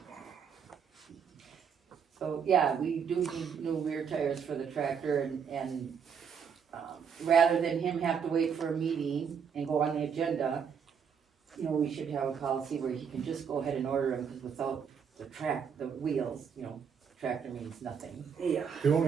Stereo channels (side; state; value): left; quieter; 6.9 dB